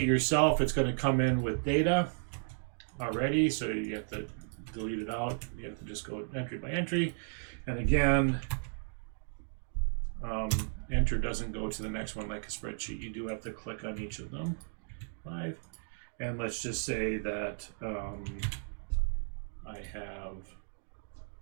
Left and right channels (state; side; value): silent; left; digital silence